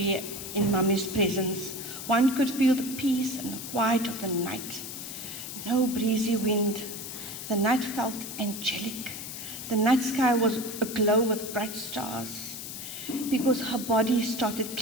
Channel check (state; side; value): noise; left; hiss, 8 dB below the sound